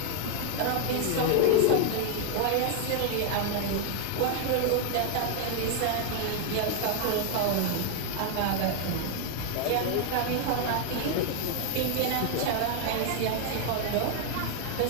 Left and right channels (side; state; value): both; different; correlation 0.00